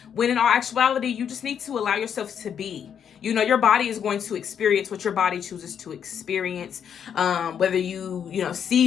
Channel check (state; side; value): quieter; right; 8.2 dB